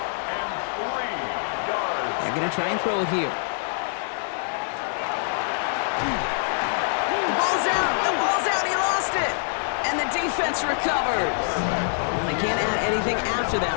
And 3 yards. They're going to try and throw it here. The ball's out. The ball's out. He lost it. And the defense recovers. Well, they can't add anything after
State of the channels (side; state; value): right; silent; digital silence